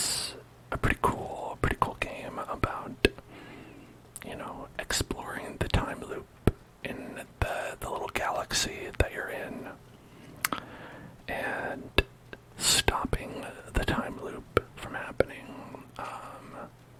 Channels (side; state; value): both; identical; correlation 1.00